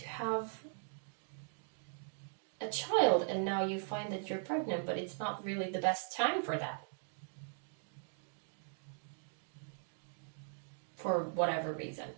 have a child and now you find that you're pregnant, but it's not really the best time for that. For whatever reason.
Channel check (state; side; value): silent; left; digital silence